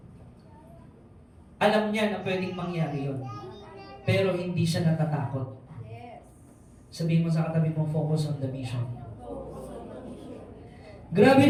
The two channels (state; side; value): identical; both; correlation 1.00